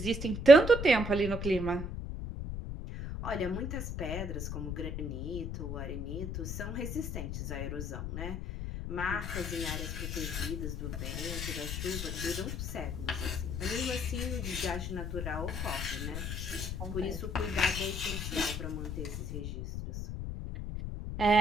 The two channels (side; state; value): left; noise; rumble, 5 dB below the sound